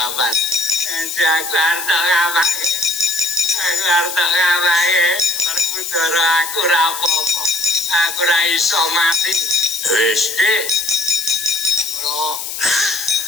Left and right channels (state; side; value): noise; left; hiss, 6 dB below the sound